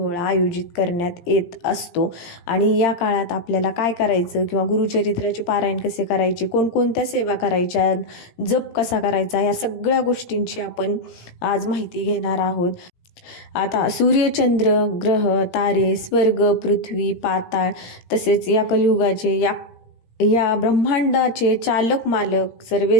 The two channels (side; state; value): right; late; 17 ms